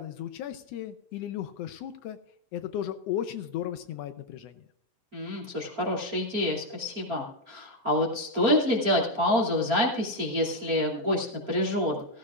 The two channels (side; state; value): left; late; 4.4 ms